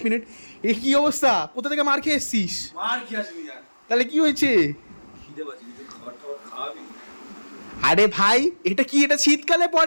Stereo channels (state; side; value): inverted; both; correlation -1.00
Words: মিনিট। এ কি অবস্থা? কোথা থেকে মার খেয়ে এসছিস? মার কি আসবি জান? তাহলে কি হয়েছে? খিদে পাচ্ছি, কিছু খাবার টাবার খাওয়াবি? আরে ভাই, এটা কি? এটা শীতকালে